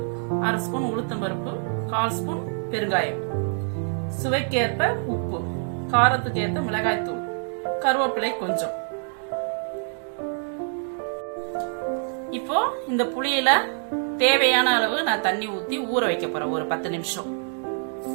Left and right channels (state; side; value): silent; left; 58 dB below the other